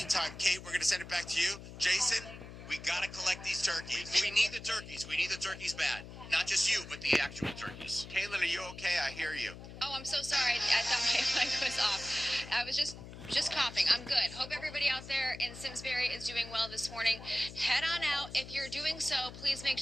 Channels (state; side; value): noise; left; hum, 13 dB below the sound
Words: Kate, we're going to send it back to you. Jason, we got to collect these turkeys. We need the turkeys. We need the turkeys bad. Not just you, but the actual turkeys. Caitlin, are you okay? I hear you. Oh, I'm so sorry. I thought my mic was off. I was just coughing. I'm good. Hope everybody out there in Simsbury is doing well this morning. Head on out. If you're doing so, please make